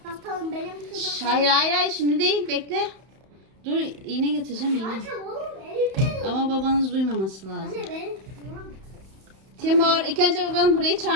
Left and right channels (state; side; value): late; left; 31 ms